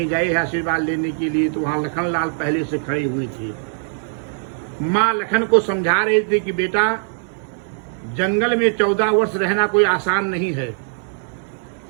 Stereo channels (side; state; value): left; silent; 65 dB below the other